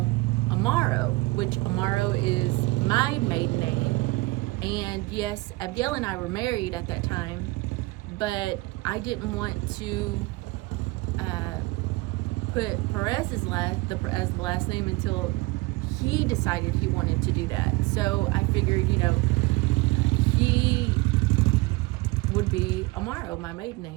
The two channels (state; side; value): quieter; left; 22.6 dB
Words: Amaro, which Amaro is my maiden name. And yes, Abiel and I were married at that time, but I didn't want to put Perez as the last name until he decided he wanted to do that. So I figured, you know, he would be Amaro, my maiden